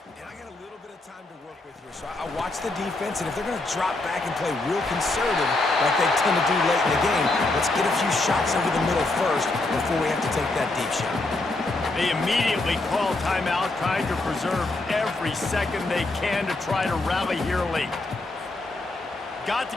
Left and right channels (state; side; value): quieter; right; 3.0 dB